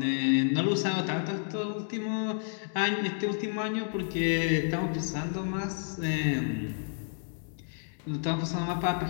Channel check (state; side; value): silent; right; digital silence